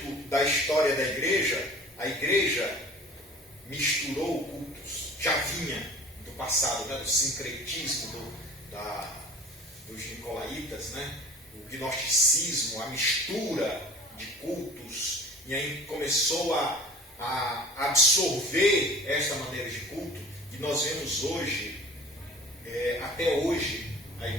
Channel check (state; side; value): normal; both; correlation 0.44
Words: da história da igreja, a igreja misturou cultos, já vinha do passado, né, do sincretismo, dos nicolaítas, né, o gnosticismo, a mistura de cultos, e aí começou a absorver esta maneira de culto, e nós vemos hoje, até hoje, a